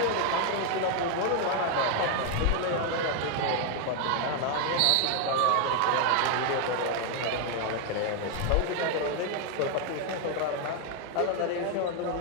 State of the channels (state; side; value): different; both; correlation 0.01